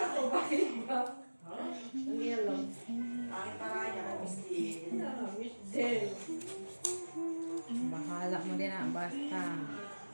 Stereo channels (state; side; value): inverted; both; correlation -1.00